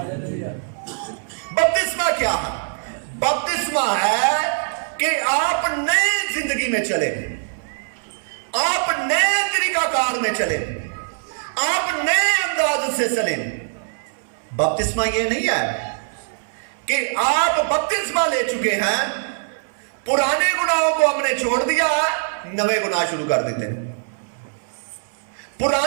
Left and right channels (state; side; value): silent; left; digital silence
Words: बपतिस्मा क्या है? बपतिस्मा है कि आप नई जिंदगी में चले, आप नए तरीकाकार में चले, आप नए अंदाज से चले। बपतिस्मा ये नहीं है कि आप बपतिस्मा ले चुके हैं, पुराने गुनाहों को हमने छोड़ दिया, नए गुनाह शुरू कर देते हैं।